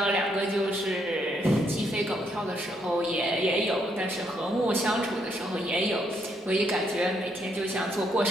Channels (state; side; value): normal; both; correlation 0.74